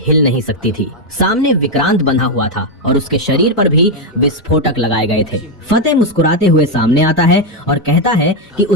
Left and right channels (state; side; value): normal; both; correlation 0.03